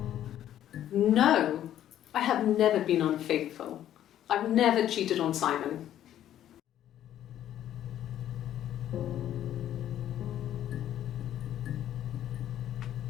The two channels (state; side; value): quieter; right; 11.5 dB